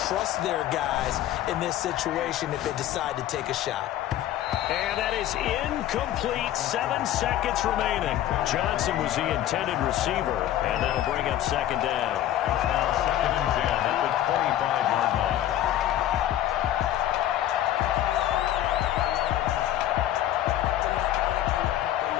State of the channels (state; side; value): quieter; right; 12.6 dB